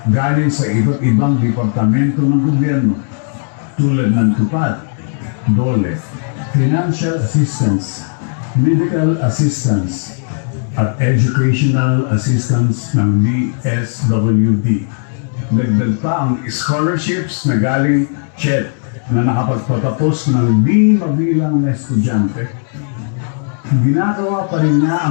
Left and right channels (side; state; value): right; silent; 70 dB below the other